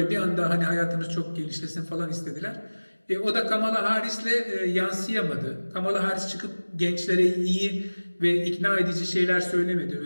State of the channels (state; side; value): inverted; both; correlation -1.00